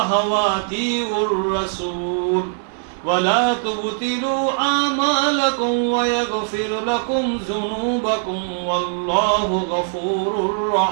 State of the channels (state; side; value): silent; left; digital silence